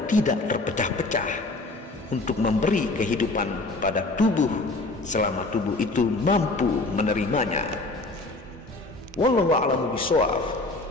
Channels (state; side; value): quieter; right; 3.0 dB